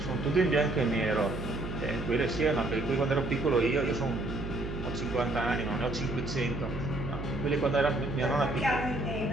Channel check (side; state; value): right; noise; hum, 7 dB below the sound